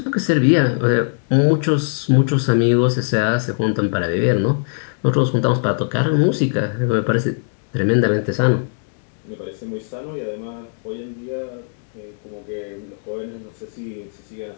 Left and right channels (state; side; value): silent; right; digital silence